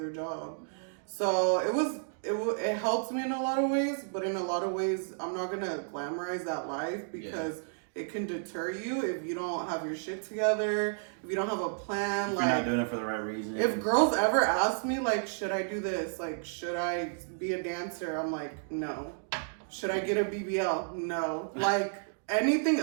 job. So it helps me in a lot of ways, but in a lot of ways I'm not gonna glamorize that life, because it can deter you if you don't have your shit together, if you don't have a plan. If you're not doing it for the right reason. If girls ever ask me like, should I do this? Like, should I be a dancer? I'm like, no. Should I get a BBL? No. Like, anything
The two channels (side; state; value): left; silent; digital silence